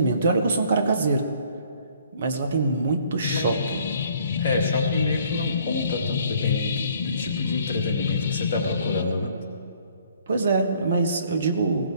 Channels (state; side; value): inverted; both; correlation -0.59